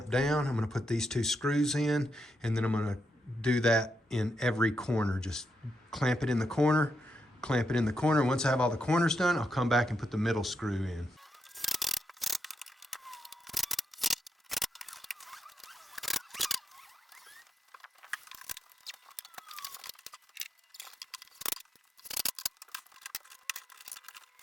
down. I'm gonna put these two screws in, and then I'm gonna do that in every corner. Just clamp it in the corner, clamp it in the corner. Once I have all the corners done, I'll come back and put the middle screw in.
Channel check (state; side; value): normal; both; correlation 0.82